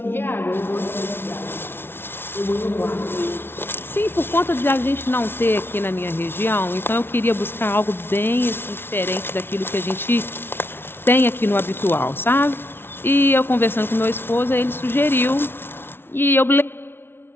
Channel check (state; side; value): late; right; 0.11 ms